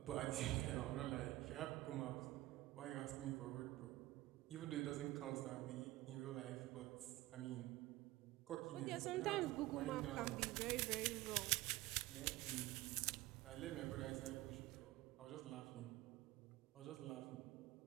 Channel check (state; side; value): quieter; left; 17.5 dB